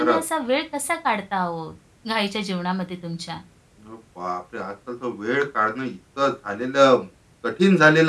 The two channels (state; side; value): identical; both; correlation 1.00